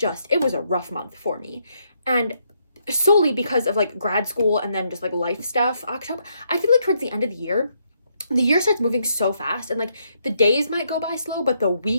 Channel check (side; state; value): both; inverted; correlation -0.75